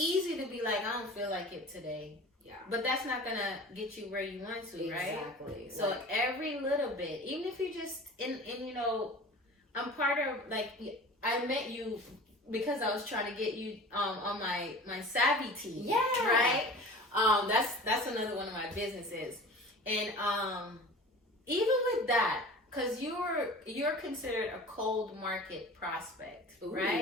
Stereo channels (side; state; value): both; normal; correlation 0.39